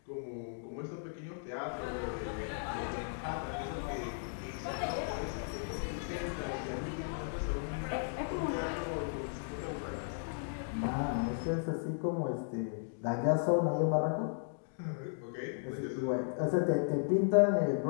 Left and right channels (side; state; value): right; silent; digital silence